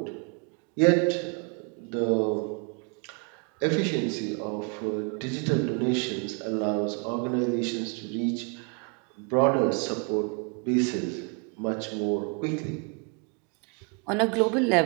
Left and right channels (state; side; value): quieter; left; 36.3 dB